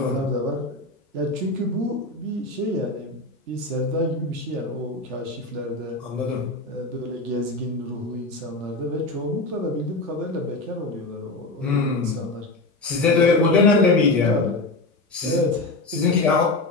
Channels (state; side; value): quieter; right; 3.0 dB